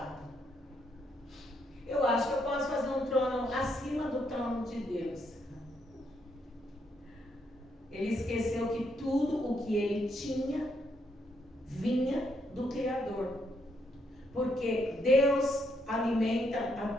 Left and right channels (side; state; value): both; normal; correlation 0.75